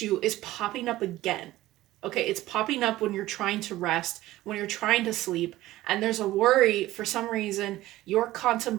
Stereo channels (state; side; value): quieter; left; 16.2 dB